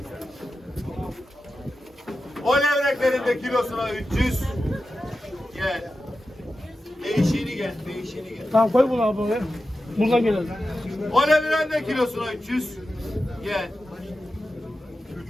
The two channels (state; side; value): normal; both; correlation 0.92